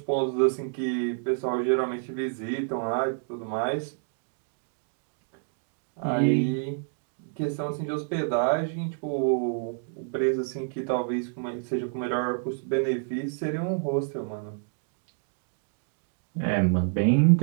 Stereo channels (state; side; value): silent; left; digital silence